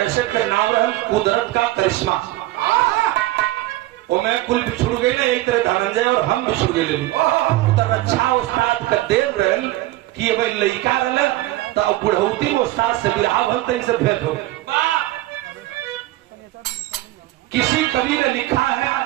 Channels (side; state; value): left; quieter; 16.9 dB